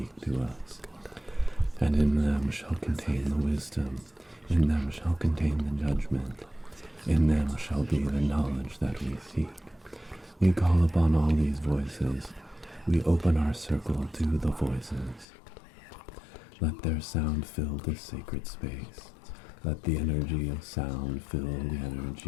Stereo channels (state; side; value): drops out; right; at 15.2 s